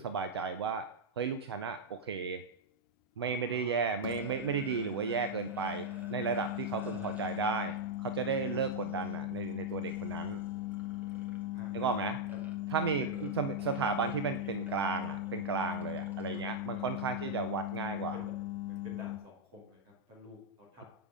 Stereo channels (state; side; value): normal; both; correlation -0.03